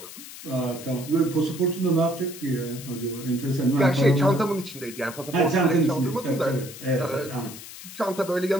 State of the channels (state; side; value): noise; left; hiss, 14 dB below the sound